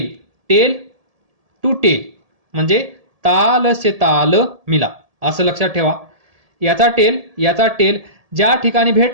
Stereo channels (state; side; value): late; left; 1.7 ms